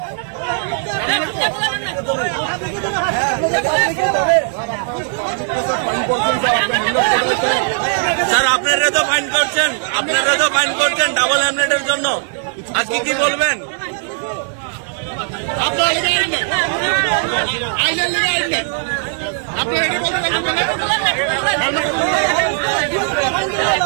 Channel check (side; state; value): left; silent; 55 dB below the other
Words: স্যার, আপনারা তো ফাইন করছেন ডাবল হেলমেটের জন্য, আজকে কি বলবেন?